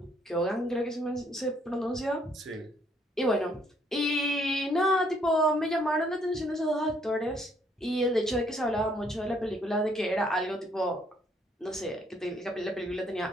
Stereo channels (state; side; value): normal; both; correlation 0.67